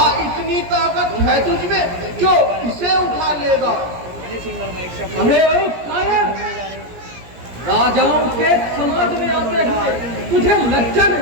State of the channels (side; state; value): left; late; 17 ms